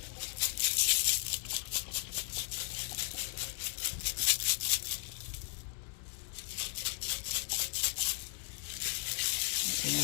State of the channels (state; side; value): silent; right; 54 dB below the other